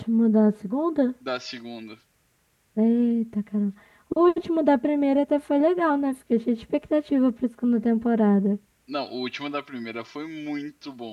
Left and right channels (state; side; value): identical; both; correlation 1.00